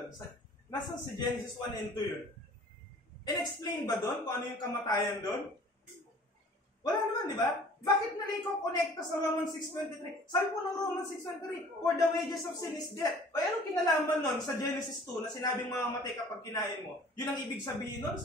Nasaan si Genesis 1 and 2 yun? In-explain ba doon kung ano yung kamatayan doon? Wala naman, di ba? Bakit nalay ko connecta sa Romans 6.23? Sabi po ng Romans 6.23, for the wages of sin is death. O anong kinalaman nun sa Genesis 2 na sinabing mamamatay kapag kinain mo? Yun ang ibig sabihin nun?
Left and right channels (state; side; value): normal; both; correlation 0.49